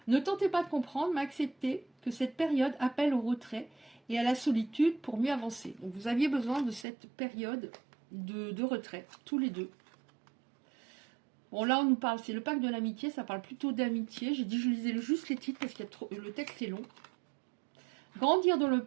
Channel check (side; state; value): left; drops out; at 6.9 s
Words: Ne tentez pas de comprendre, mais acceptez que cette période appelle au retrait et à la solitude pour mieux avancer. Donc vous aviez besoin de cette période de retrait, tous les deux. Bon, là, on nous parle, c'est le pacte de l'amitié, ça parle plutôt d'amitié. J'ai dit, je lisais juste les titres parce que le texte est long. Grandir dans le